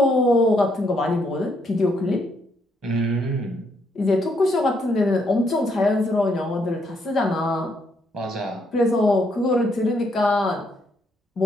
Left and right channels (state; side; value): normal; both; correlation 0.74